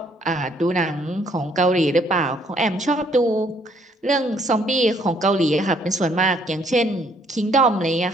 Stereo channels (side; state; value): both; normal; correlation 0.66